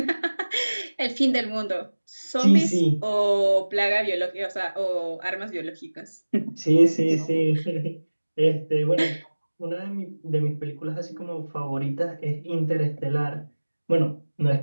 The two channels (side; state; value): both; inverted; correlation -1.00